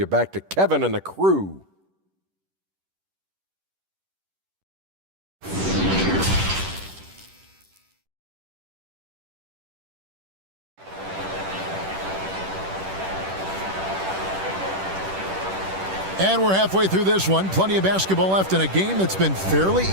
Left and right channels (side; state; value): left; late; 10 ms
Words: back to Kevin and the crew. And we're halfway through this one. Plenty of basketball left in a game that's been fairly